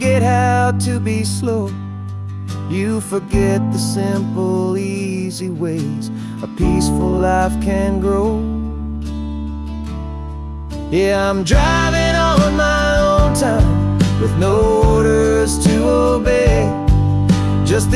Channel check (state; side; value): identical; both; correlation 1.00